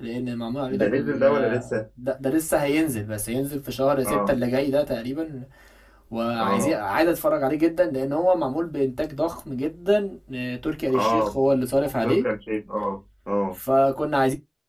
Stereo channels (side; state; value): both; identical; correlation 1.00